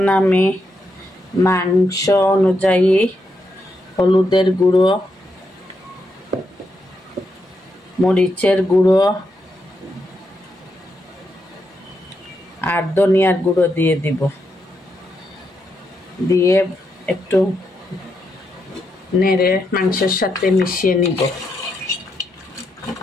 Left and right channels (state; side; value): normal; both; correlation 0.82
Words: আমি মাংস অনুযায়ী হলুদের গুঁড়ো, মরিচের গুঁড়ো আর ধনিয়ার গুঁড়ো দিয়ে দিব। দিয়ে একটু নেড়ে মাংসের সাথে মিশিয়ে নিব।